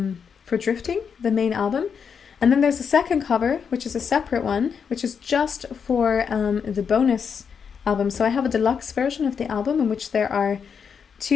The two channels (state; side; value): quieter; right; 6.6 dB